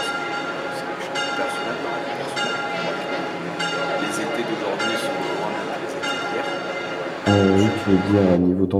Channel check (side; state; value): both; identical; correlation 1.00